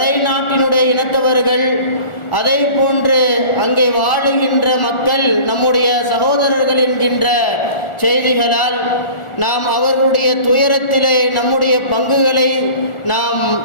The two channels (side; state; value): right; late; 1.4 ms